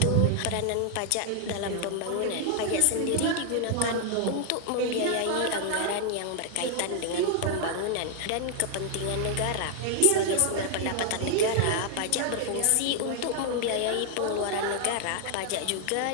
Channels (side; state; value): both; different; correlation 0.00